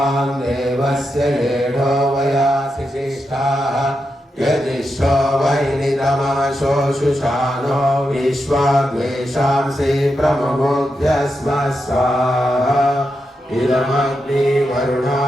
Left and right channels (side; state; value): both; normal; correlation 0.86